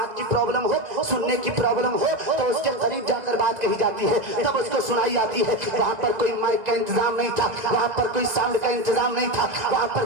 کی پرابلم ہو، سننے کی پرابلم ہو تو اس کے قریب جا کر بات کہی جاتی ہے، تب اس کو سنائی آتی ہے۔ وہاں پر کوئی مائک کا انتظام نہیں تھا، وہاں پر کوئی ساؤنڈ کا انتظام نہیں تھا، وہاں پر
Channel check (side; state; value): left; late; 2.0 ms